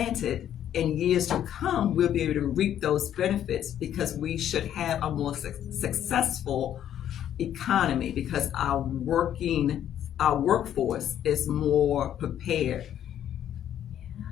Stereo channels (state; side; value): quieter; right; 10.6 dB